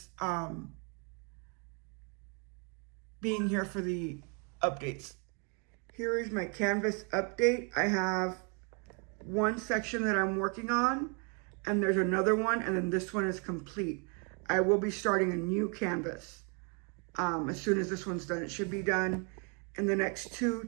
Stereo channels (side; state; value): left; quieter; 36.3 dB